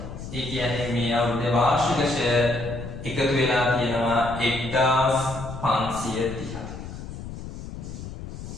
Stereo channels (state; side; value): noise; left; rumble, 10 dB below the sound